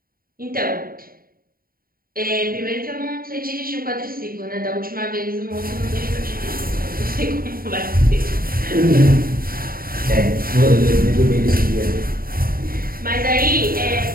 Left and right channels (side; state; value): left; late; 0.42 ms